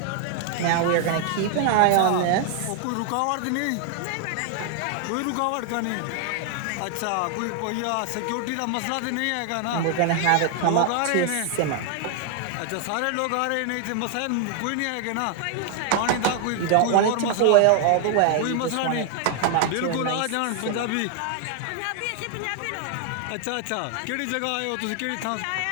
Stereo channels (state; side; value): different; both; correlation 0.00